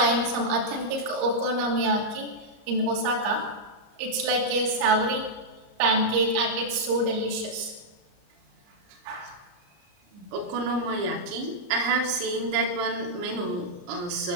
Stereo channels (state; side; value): late; left; 34 ms